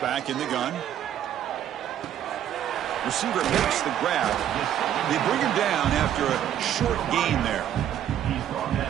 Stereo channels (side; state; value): left; quieter; 10.6 dB